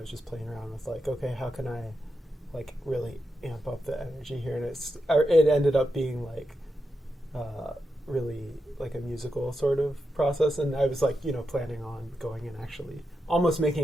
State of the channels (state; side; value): normal; both; correlation 0.87